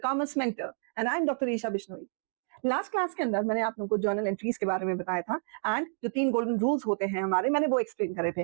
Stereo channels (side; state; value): left; silent; digital silence